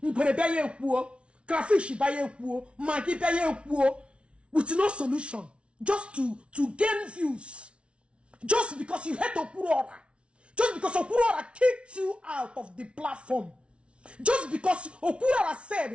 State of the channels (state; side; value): late; left; 0.059 ms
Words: Baye kuo. Crayfish baye kuo. Maggi baye kuo. With no solution. Just to gain views. Just because you hate Okwuluora. Just because Okwuluora kicked you out of the platform. Just because Okwuluora